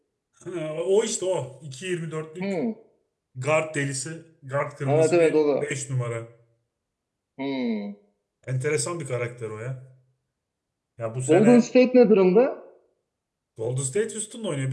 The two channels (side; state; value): both; identical; correlation 1.00